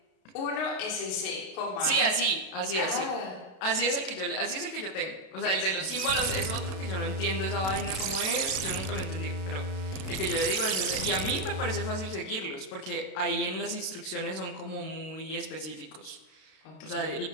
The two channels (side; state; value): right; late; 32 ms